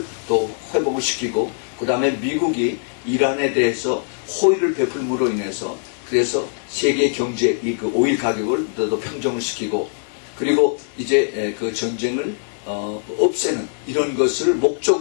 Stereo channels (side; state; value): right; silent; 65 dB below the other